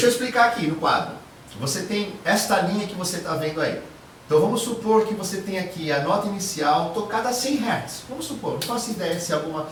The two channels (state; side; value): identical; both; correlation 1.00